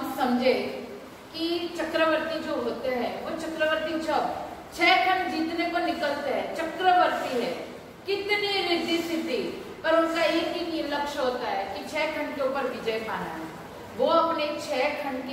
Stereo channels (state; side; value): identical; both; correlation 1.00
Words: समझे कि चक्रवर्ती जो होते हैं, वो चक्रवर्ती जब 6 खंड जीतने को निकलते हैं, चक्रवर्ती है, कितनी रिद्धि सिद्धि, पर उनका एक ही लक्ष्य होता है कि 6 खंड के ऊपर विजय पाना है। वो अपने 6 खंड